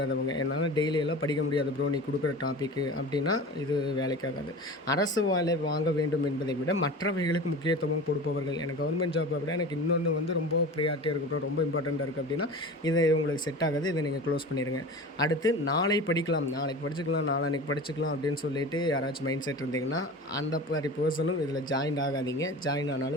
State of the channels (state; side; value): normal; both; correlation 0.34